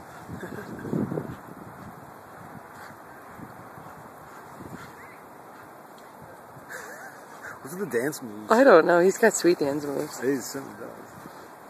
What's the dance moves? I don't know. He's got sweet dance moves. He certainly does.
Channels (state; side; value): identical; both; correlation 1.00